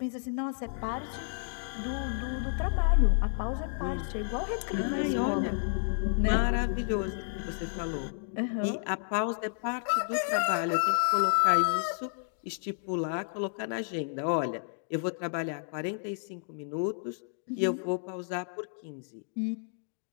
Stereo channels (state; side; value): silent; right; digital silence